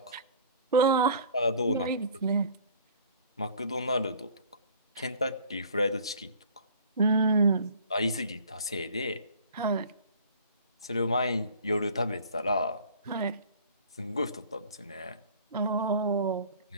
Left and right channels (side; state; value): both; inverted; correlation -0.48